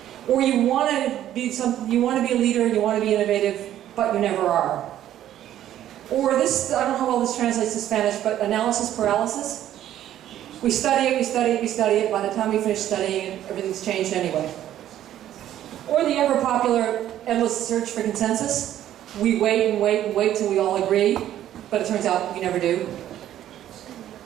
Or you want to be a leader, you want to be innovative, but you never are. Or this, I don't know how well this translates to Spanish, but analysis paralysis. We study it, we study it, we study it. By the time we finish studying it, everything's changed anyway. Or the ever popular endless search for consensus. We wait and wait and wait till we all agree, but it turns out we never do.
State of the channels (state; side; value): quieter; left; 12.0 dB